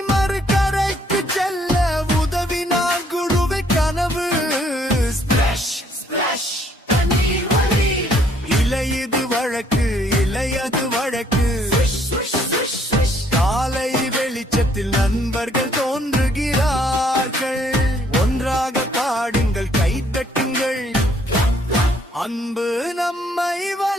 காலை வெளிச்சத்தில் நண்பர்கள் தோன்றுகிறார்கள். ஒன்றாக பாடுங்கள், கைதட்டுங்கள். அன்பு நம்மை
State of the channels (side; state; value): both; normal; correlation 0.65